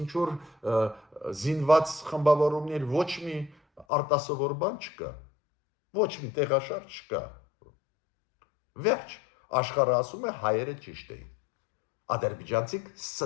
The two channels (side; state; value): right; drops out; at 3.9 s